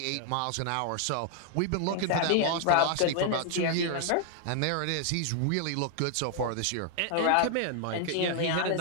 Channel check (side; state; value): both; different; correlation 0.00